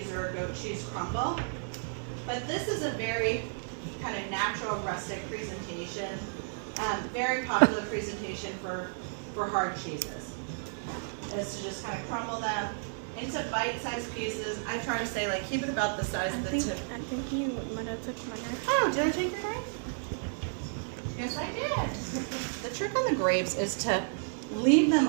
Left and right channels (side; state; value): left; silent; 56 dB below the other